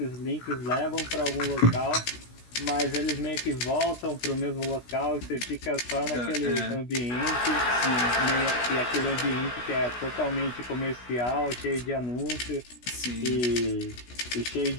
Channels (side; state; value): right; late; 16 ms